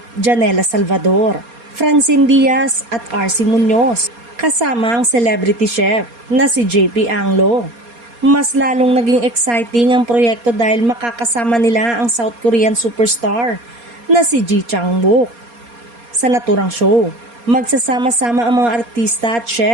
Janela Salvador, Francine Diaz at RC Munoz, kasama ang celebrity chef na si JP Anglo. Mas lalong naging exciting ang proyekto dahil makakasama nila ang South Korean superstar na si Ji Chang-wook. Sa naturang show, magsasama-sama ang mga artista at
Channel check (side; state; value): left; late; 4.2 ms